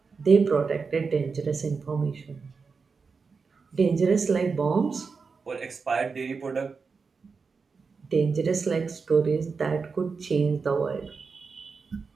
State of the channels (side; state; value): left; quieter; 5.0 dB